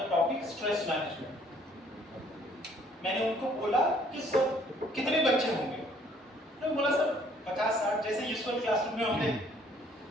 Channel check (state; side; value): normal; both; correlation 0.61